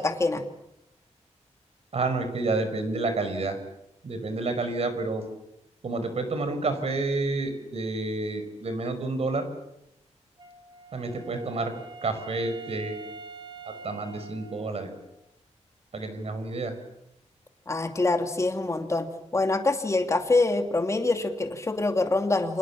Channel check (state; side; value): normal; both; correlation 0.70